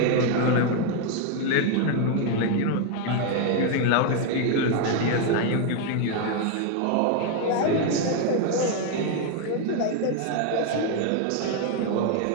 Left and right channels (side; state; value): both; different; correlation 0.01